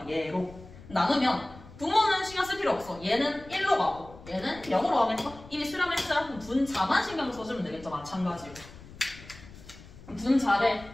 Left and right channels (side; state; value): left; noise; rumble, 19 dB below the sound